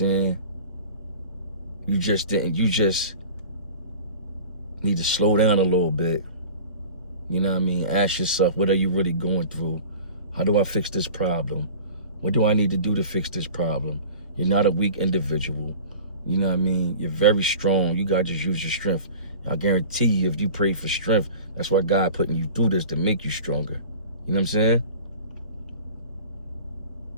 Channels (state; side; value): inverted; both; correlation -0.39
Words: You just need to slow down a little bit. You know what I mean? Ask yourself, what are you really going through? How do I fix this problem? What do I need to do to fix this problem? You're not a weak individual. You know what I mean? You're very strong. You got to just use your strength. I guarantee you, if you pray for strength, that's why God putting you through this, to make you stronger. You know what I'm saying?